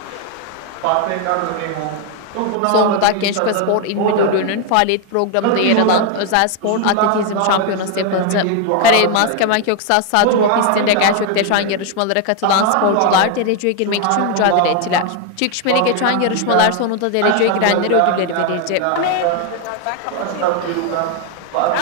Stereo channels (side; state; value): both; different; correlation 0.01